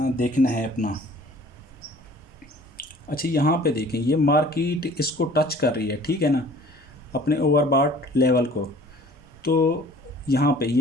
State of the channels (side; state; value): both; normal; correlation 0.50